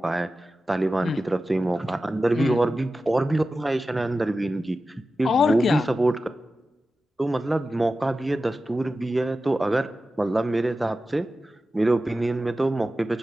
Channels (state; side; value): normal; both; correlation 0.93